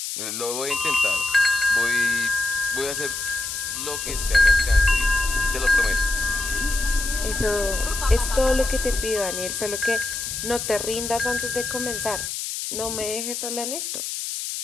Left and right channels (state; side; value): noise; left; hiss, 5 dB below the sound